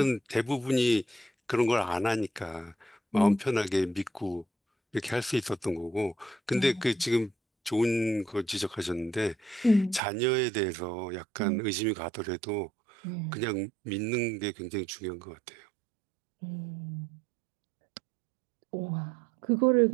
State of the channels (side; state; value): left; drops out; at 10.0 s